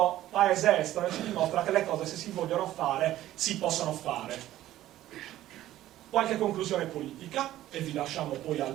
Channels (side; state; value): left; quieter; 14.0 dB